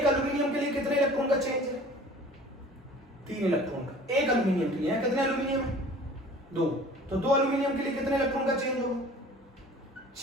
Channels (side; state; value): both; normal; correlation 0.46